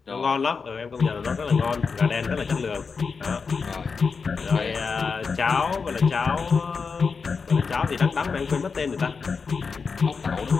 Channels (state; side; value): quieter; right; 5.1 dB